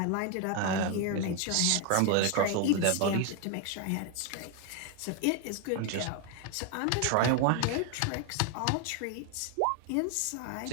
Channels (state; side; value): different; both; correlation 0.01